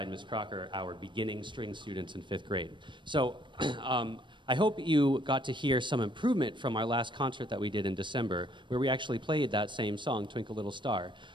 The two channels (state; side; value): late; left; 0.23 ms